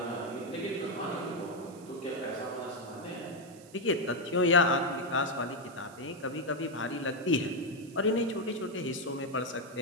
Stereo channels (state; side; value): noise; right; hiss, 22 dB below the sound